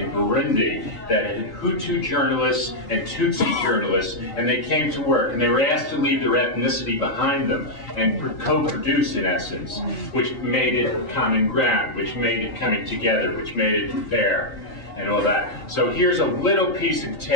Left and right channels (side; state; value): right; late; 3.9 ms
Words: Burundi that had Hutu journalists and Tutsi journalists, and they came to work, and they were asked to leave their ethnicity behind them and co-produce, in essence, which made it common ground, which made it coming together, which made it fair, and all that. So here's a little piece of